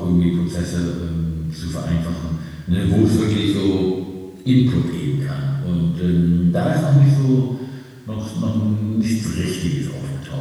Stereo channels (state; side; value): identical; both; correlation 1.00